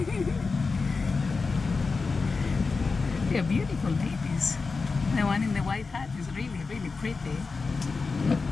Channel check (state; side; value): quieter; right; 4.4 dB